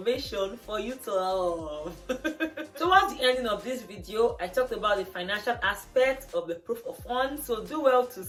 for you to love. Towards the ending of this video, I talked about the financial aspect of the proof of funds, so do well to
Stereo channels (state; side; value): identical; both; correlation 1.00